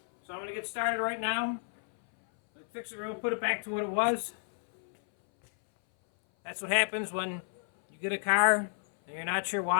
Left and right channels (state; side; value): silent; right; 57 dB below the other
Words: So I'm going to get started right now. Let's fix it real, put it back to what it was. That's what happens when you get a car and you're not sure